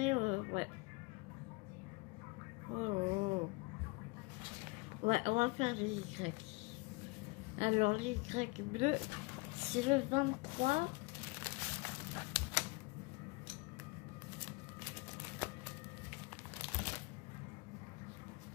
ouais. Oh. Ouais, on va faire les Y. Alors, les Y bleus, c'est le 23.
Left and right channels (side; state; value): right; quieter; 26.4 dB